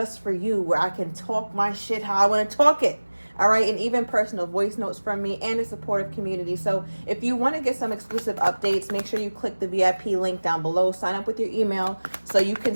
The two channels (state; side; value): inverted; both; correlation -1.00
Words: for you where I can talk my shit how I want to talk it. All right, and even personal voice notes from me and a supportive community. So if you want to get some exclusive updates, make sure you click the VIP link down below. Sign up with your email so you can